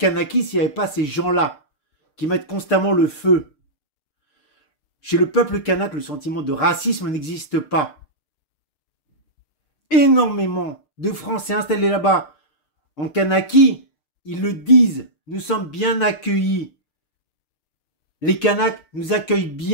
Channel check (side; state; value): right; late; 6.6 ms